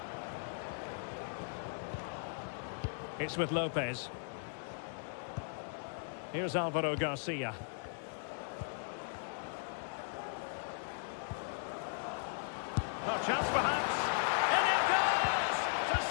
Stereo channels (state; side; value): silent; right; digital silence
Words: It's with Lopez. Here's Alvaro Garcia. A chance perhaps. And it goes to